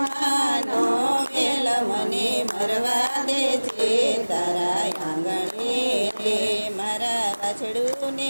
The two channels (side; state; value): both; inverted; correlation -1.00